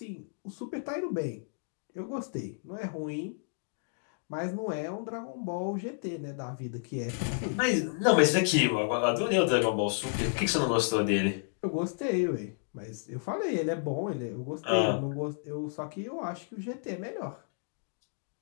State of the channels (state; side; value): silent; right; digital silence